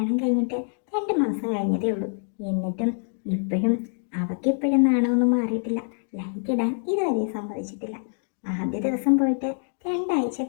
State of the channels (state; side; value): silent; right; digital silence